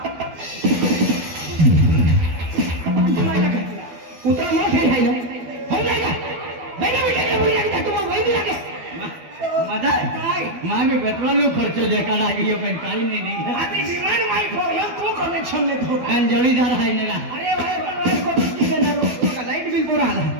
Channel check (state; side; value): late; left; 12 ms